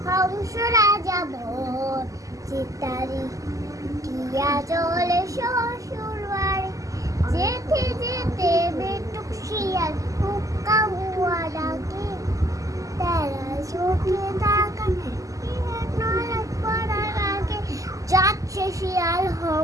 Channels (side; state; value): left; late; 0.16 ms